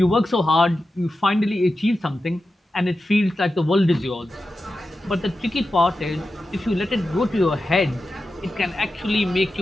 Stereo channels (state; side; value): normal; both; correlation 0.92